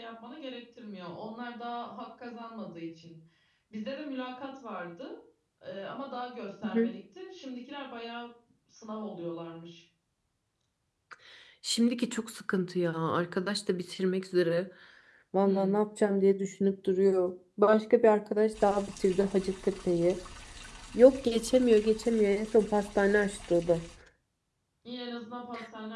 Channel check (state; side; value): identical; both; correlation 1.00